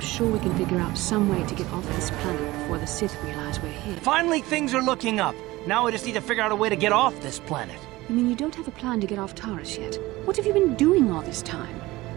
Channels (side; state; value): left; quieter; 19.2 dB